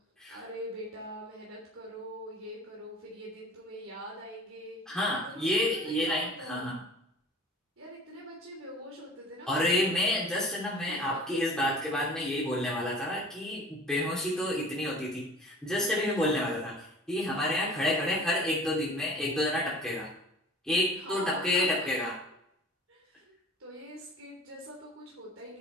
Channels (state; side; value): normal; both; correlation 0.45